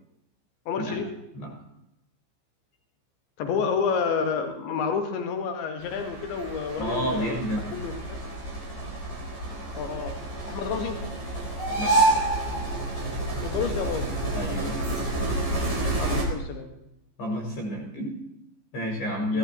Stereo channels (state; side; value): late; right; 15 ms